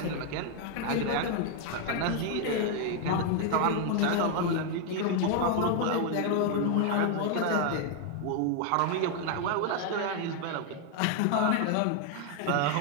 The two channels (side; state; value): both; different; correlation 0.00